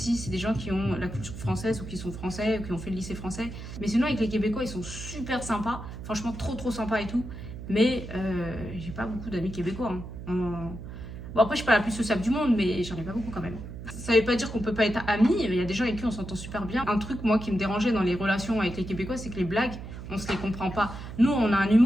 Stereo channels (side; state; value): right; noise; hum, 10 dB below the sound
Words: c'est des gens qui ont la culture française ou qui sont français ou qui ont fait le lycée français. Mais sinon, avec les Québécois, ils sont super sympas. Franchement, trop sympas et tout. Mais j'ai pas beaucoup d'amis québécois. Hein. Bon, après, je suis pas la plus sociable du monde, mais j'en ai pas beaucoup quand même. Ça veut pas dire qu'on peut pas être amis. Il y a des gens avec qui on s'entend super bien. Un truc, moi, qui me dérangeait dans les relations avec les Québécois, c'est que les blagues, on se les comprend pas. Nous, on a un